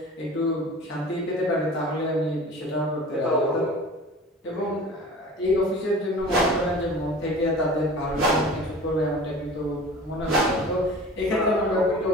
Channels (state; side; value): normal; both; correlation 0.40